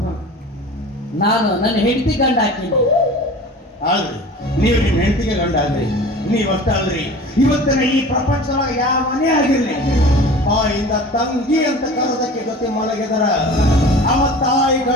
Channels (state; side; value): normal; both; correlation 0.40